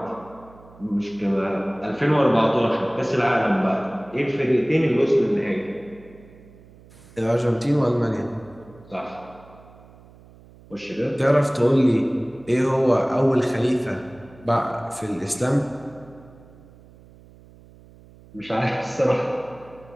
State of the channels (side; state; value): right; noise; hum, 24 dB below the sound